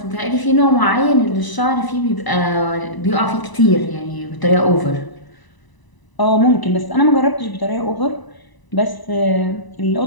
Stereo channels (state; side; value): late; right; 1.0 ms